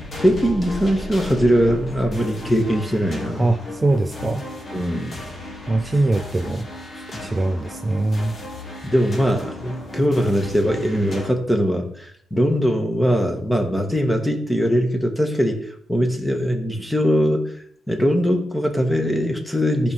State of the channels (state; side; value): normal; both; correlation 0.90